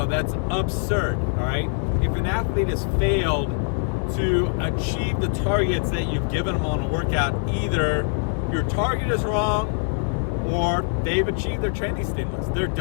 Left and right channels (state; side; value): silent; right; digital silence